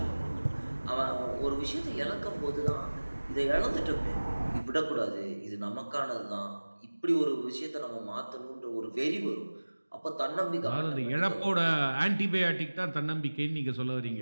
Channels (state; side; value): inverted; both; correlation -1.00